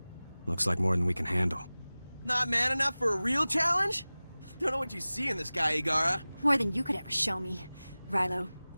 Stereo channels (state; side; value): inverted; both; correlation -0.98